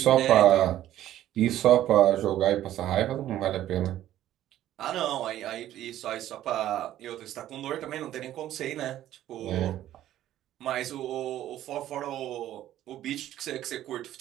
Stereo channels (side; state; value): left; quieter; 12.9 dB